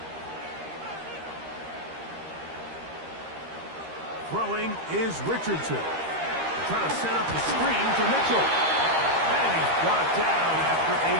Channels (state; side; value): late; left; 13 ms